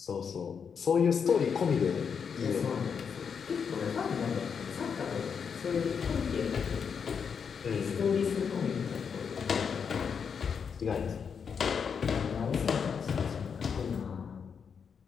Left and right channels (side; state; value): right; quieter; 6.6 dB